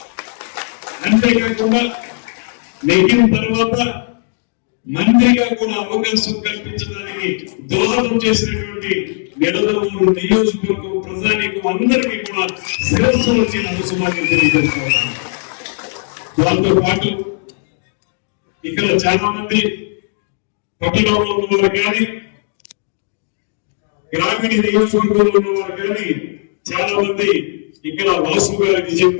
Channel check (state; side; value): silent; right; 65 dB below the other